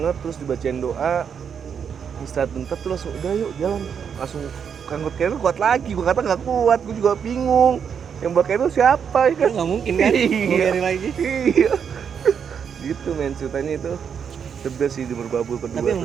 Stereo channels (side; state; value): left; quieter; 7.3 dB